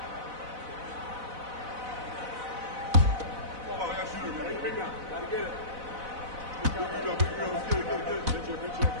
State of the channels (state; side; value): late; left; 4.0 ms